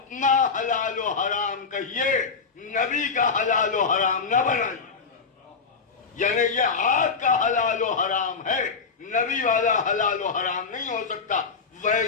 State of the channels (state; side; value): quieter; right; 5.1 dB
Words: حلال و حرام کہیے، نبی کا حلال و حرام نہ بنائیے۔ یعنی یہ آپ کا حلال و حرام ہے، نبی والا حلال و حرام نہیں ہو سکتا۔